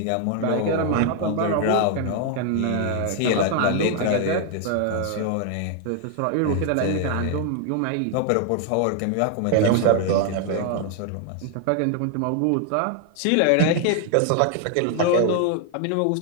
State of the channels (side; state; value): both; different; correlation 0.00